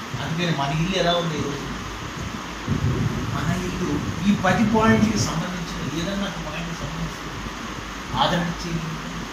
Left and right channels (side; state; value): both; identical; correlation 1.00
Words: అందుకని మన ఇల్లు ఎలా ఉంది ఈరోజు? మన ఇల్లు ఈ 10 పాయింట్కి సంబంధించిన ఏదన్నా ఒక పాయింట్కి సంబంధించిన ఆదరించే ఇల్లు,